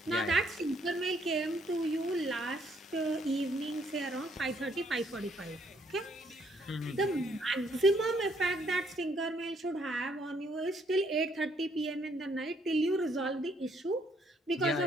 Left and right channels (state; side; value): normal; both; correlation 0.69